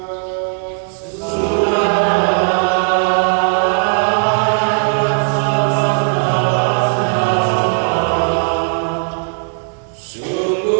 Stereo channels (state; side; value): silent; left; 59 dB below the other